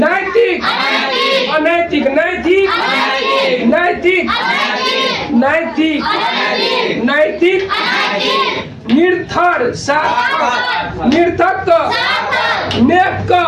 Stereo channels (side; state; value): both; identical; correlation 1.00